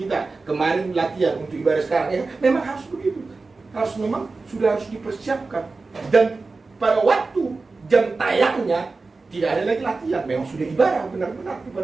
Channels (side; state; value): left; quieter; 3.8 dB